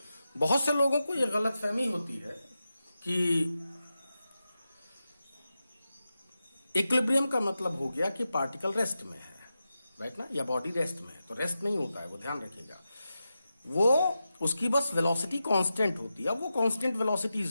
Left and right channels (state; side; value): inverted; both; correlation -0.91